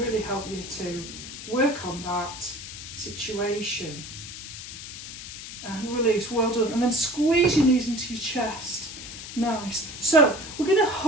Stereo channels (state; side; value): noise; left; hiss, 11 dB below the sound